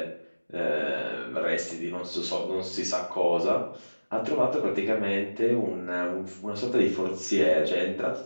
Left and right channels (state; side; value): inverted; both; correlation -1.00